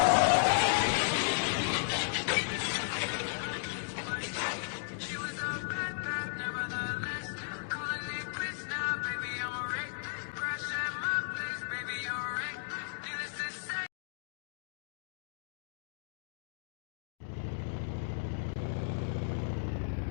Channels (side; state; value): right; silent; digital silence